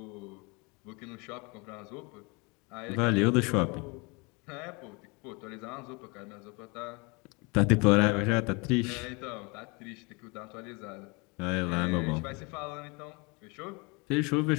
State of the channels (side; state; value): right; quieter; 28.9 dB